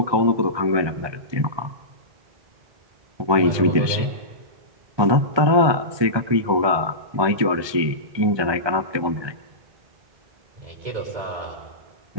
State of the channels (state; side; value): late; left; 1.2 ms